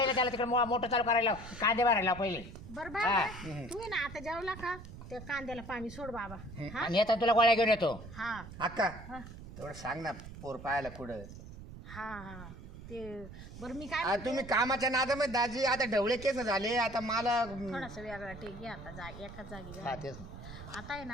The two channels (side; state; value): right; noise; rumble, 13 dB below the sound